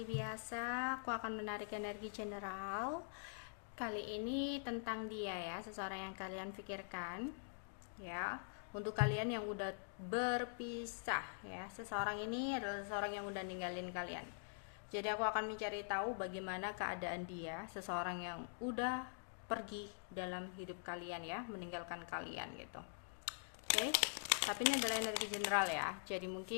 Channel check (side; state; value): right; silent; digital silence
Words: biasa, aku akan menarik energi general. Kali ini tentang dia ya, seseorang yang kalian pikirkan. Ya, untuk kalian yang udah berpisah ya, seseorang ini adalah seseorang yang udah ninggalin kalian. Jadi aku akan mencari tahu bagaimana keadaan dia, seseorang yang udah pergi dalam hidup kalian ya, meninggalkan kalian gitu. Oke, tapi ini adalah energi general ya, jadi